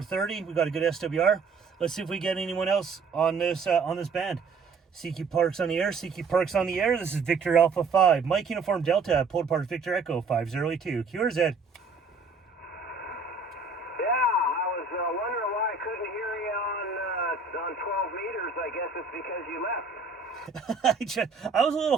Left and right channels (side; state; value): left; quieter; 4.6 dB